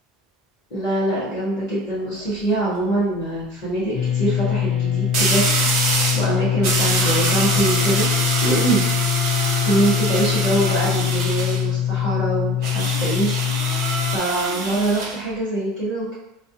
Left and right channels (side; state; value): both; normal; correlation 0.43